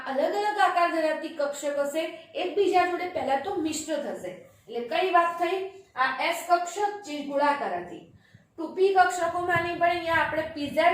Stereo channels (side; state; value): both; identical; correlation 1.00